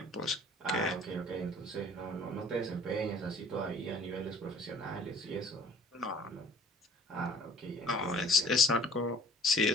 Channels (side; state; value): both; normal; correlation 0.51